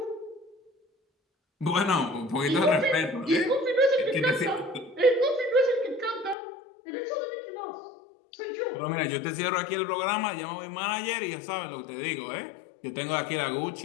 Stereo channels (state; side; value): drops out; right; at 6.4 s